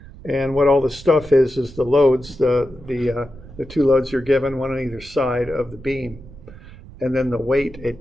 And what all the stuff is the loads, the two loads you're given, one on either side of the beam. And then the weight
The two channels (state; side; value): noise; right; rumble, 18 dB below the sound